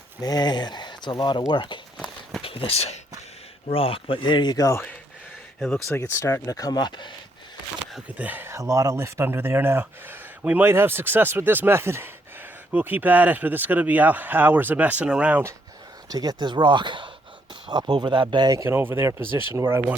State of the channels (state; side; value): normal; both; correlation 0.73